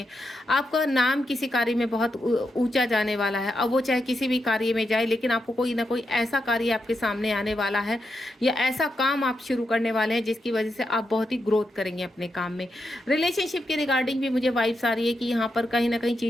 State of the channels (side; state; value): both; normal; correlation 0.84